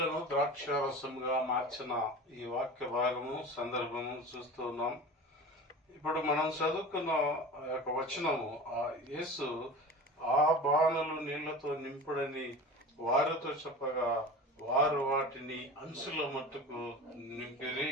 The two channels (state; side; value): normal; both; correlation 0.34